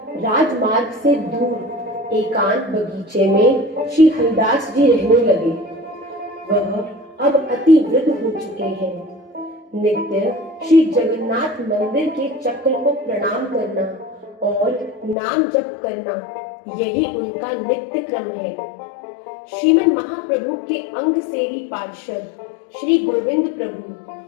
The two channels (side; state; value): right; drops out; at 15.2 s